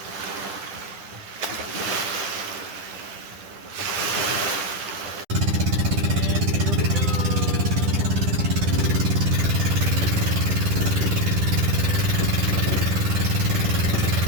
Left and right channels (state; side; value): late; left; 10 ms